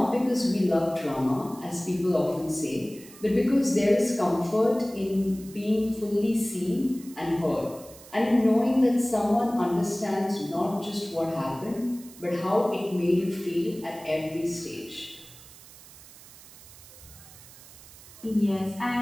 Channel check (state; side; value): noise; right; hiss, 20 dB below the sound